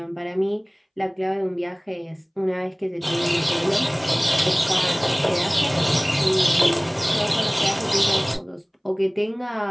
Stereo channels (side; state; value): both; identical; correlation 1.00